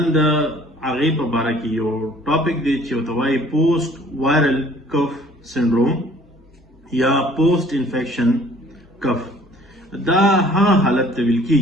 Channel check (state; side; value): normal; both; correlation 0.55